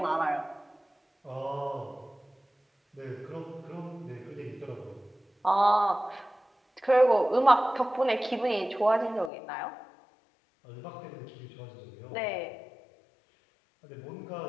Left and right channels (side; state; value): right; drops out; at 9.3 s